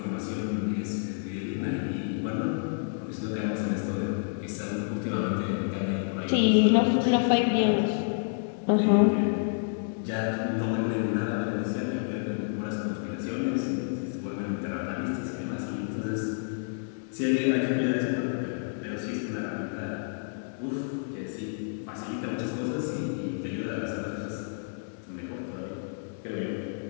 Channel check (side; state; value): right; silent; digital silence